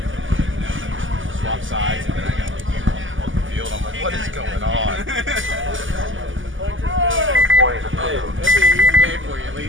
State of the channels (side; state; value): left; late; 0.57 ms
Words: swap sides, and then I got like you on the field. I'm like, what is going on? That'd be an easy day for you, Lee.